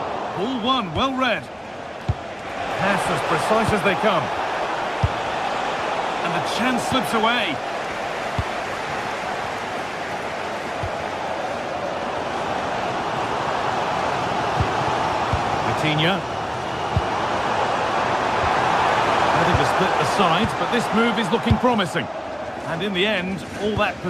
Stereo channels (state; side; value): identical; both; correlation 1.00